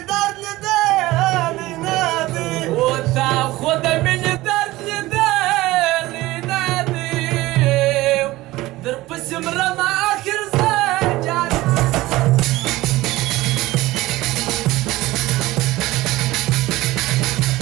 درد لدالي نادي وتاخذ مني درد بالي نادي درب اسم رمى آخر زجاج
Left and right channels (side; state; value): left; quieter; 18.3 dB